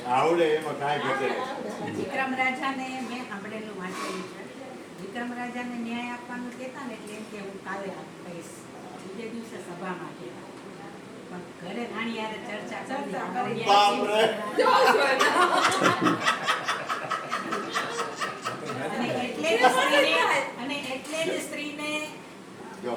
આવડે, એમાં કાંઈ ઘટે નહીં. વિક્રમ રાજાને મેં સાંભળેલું વાંચેલું છે. વિક્રમ રાજાને ન્યાય આપવાનું કહેતા ને એટલે એમ કે હું કાલે આપીશ, બીજે દિવસે સભામાં કહેતા. પણ ઘરે રાણી યારે ચર્ચા કરી. બાપરે. અને એટલે જ સ્ત્રીને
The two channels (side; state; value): both; identical; correlation 1.00